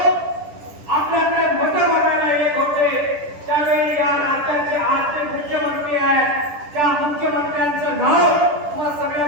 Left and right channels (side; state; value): left; late; 10 ms